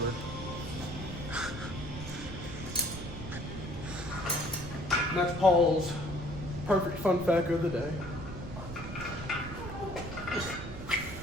And that's Paul's perfect fun fact of the day.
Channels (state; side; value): noise; right; rumble, 10 dB below the sound